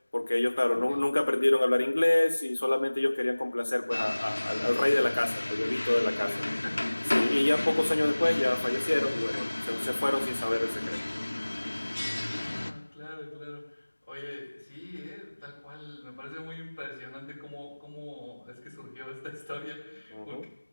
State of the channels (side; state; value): both; inverted; correlation -1.00